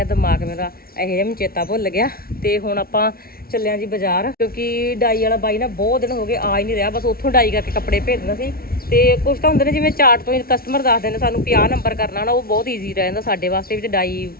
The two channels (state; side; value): late; right; 0.44 ms